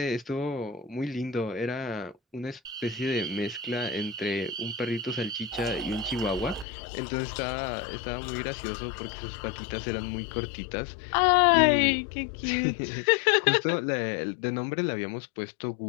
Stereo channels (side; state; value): right; drops out; at 6.7 s